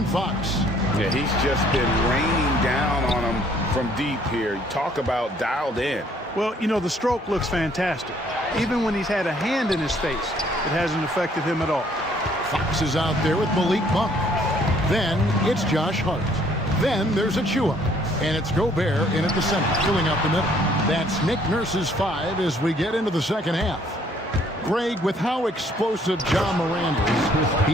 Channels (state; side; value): normal; both; correlation 0.62